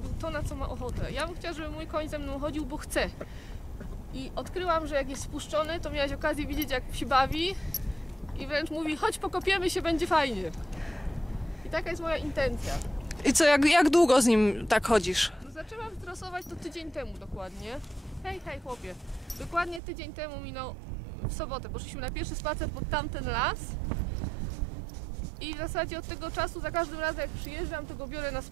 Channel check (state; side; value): drops out; left; at 19.8 s